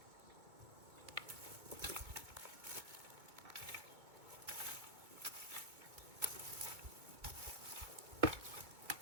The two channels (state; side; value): late; left; 2.2 ms